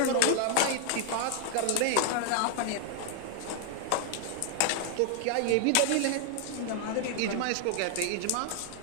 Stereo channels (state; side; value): different; both; correlation 0.00